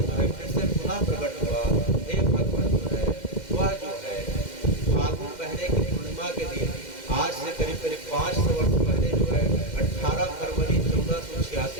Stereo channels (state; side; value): late; right; 2.1 ms